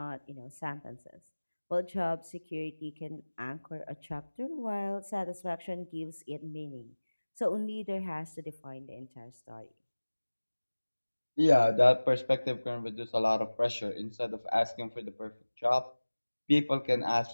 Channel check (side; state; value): both; inverted; correlation -1.00